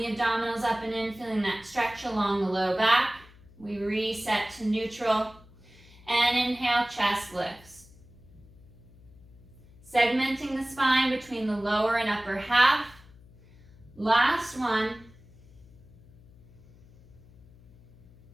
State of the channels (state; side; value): noise; left; hum, 24 dB below the sound